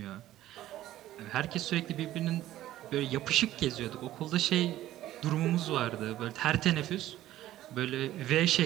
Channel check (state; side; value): quieter; left; 14.1 dB